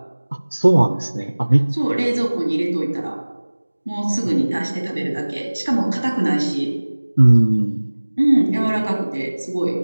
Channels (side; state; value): both; inverted; correlation -1.00